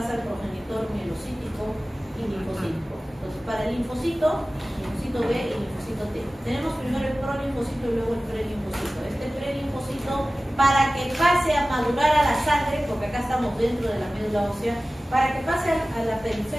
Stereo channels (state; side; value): normal; both; correlation 0.97